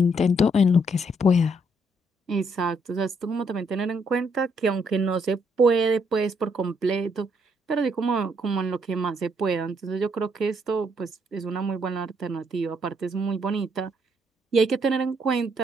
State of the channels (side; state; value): both; normal; correlation 0.72